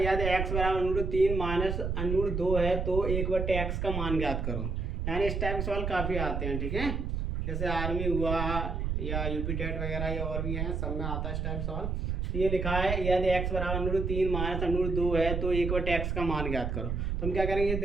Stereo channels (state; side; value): noise; right; rumble, 2 dB below the sound